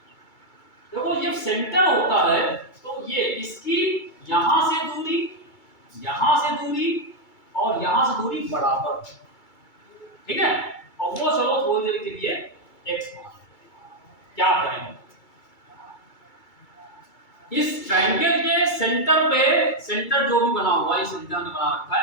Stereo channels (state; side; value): late; right; 2.3 ms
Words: देखो जब सेंटर होता है तो ये इसकी यहां से दूरी, यहां से दूरी और यहां से दूरी बराबर, ठीक है। और वो चलो थोड़ी देर के लिए x मान, क्या करेंगे, इस ट्रायंगल के सेंटर पे, सेंटर जो भी बना हुआ है, सेंटर ने बना रखा